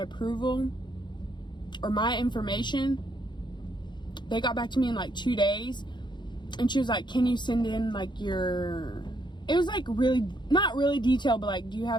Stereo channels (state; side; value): late; right; 0.22 ms